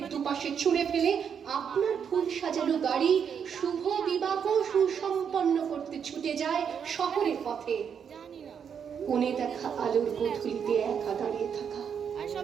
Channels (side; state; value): left; quieter; 7.5 dB